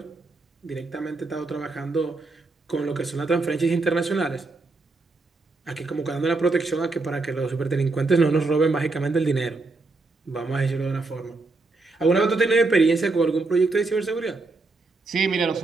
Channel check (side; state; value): left; quieter; 3.5 dB